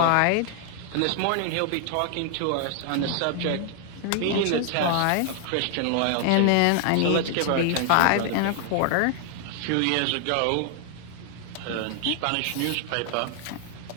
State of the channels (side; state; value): both; different; correlation 0.00